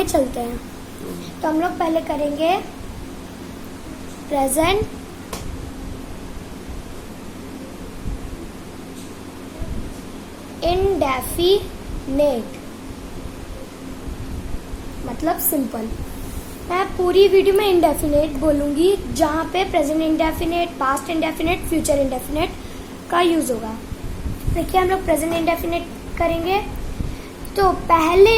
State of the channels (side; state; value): both; identical; correlation 1.00